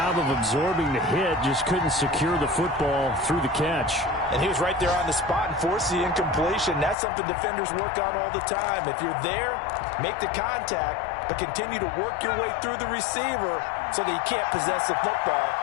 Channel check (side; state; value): right; drops out; at 7.0 s